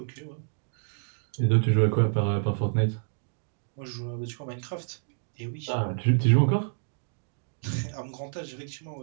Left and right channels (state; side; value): silent; left; digital silence